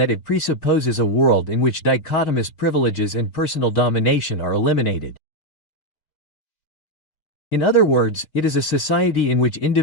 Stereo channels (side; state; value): right; late; 4.4 ms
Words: it presupposes a world in which dichotomous privileges and personal domination are eliminated. In other words, it is a society in which